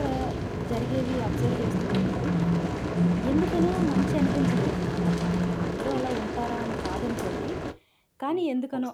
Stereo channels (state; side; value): identical; both; correlation 1.00